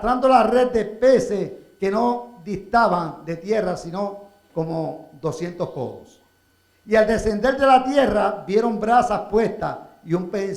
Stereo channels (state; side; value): identical; both; correlation 1.00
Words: la red de peces que no distaban de tierra, sino como 200 codos. Y al descender de la tierra, vieron brasas puestas y un pez